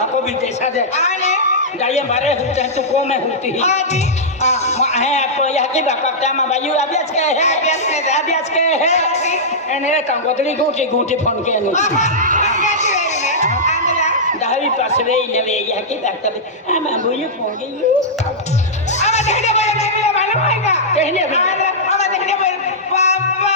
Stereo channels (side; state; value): both; normal; correlation -0.11